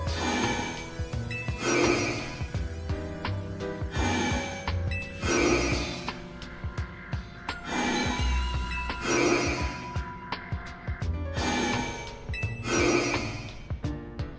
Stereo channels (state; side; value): identical; both; correlation 1.00